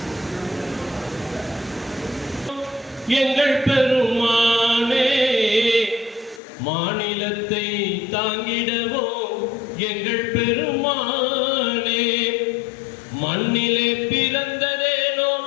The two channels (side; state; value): right; drops out; at 6.4 s